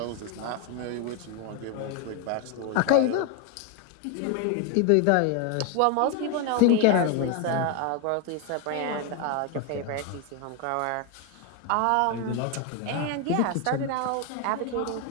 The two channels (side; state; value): both; different; correlation 0.01